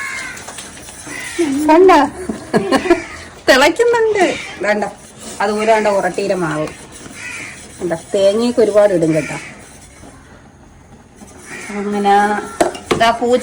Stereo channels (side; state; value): both; identical; correlation 1.00